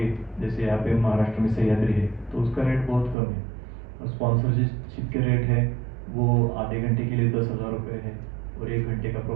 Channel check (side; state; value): left; drops out; at 3.2 s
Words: जैसे यहाँ पे महाराष्ट्र में सह्याद्री है, तो उसका रेट बहुत कम है। और स्पॉन्सरशिप के रेट है वो आधे घंटे के लिए 10,000 रुपये है, और 1 घंटे का